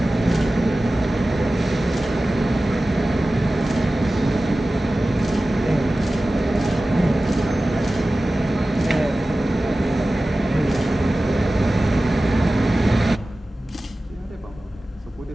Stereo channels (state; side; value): normal; both; correlation 0.96